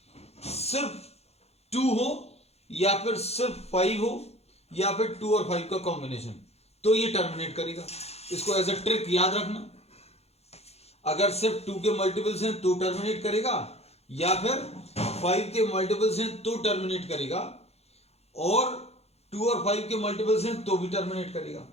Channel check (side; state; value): right; late; 0.30 ms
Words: सिर्फ 2 हो, या फिर सिर्फ 5 हो, या फिर 2 और 5 का कॉम्बिनेशन, तो ये टर्मिनेट करेगा। इसको एज अ ट्रिक याद रखना, अगर सिर्फ 2 के मल्टीपल्स हैं तो टर्मिनेट करेगा, या फिर 5 के मल्टीपल्स हैं तो टर्मिनेट करेगा, और 2 और 5 के मल्टीपल्स हैं तो भी टर्मिनेट करेगा,